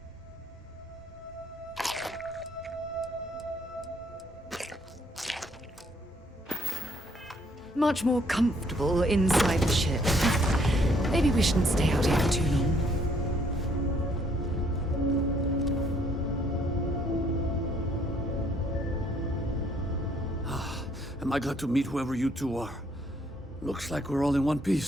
much more comfortable inside the ship. Maybe we shouldn't stay out here for too long. Am I glad to meet whoever you two are. Looks like we're all in one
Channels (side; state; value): both; normal; correlation 0.67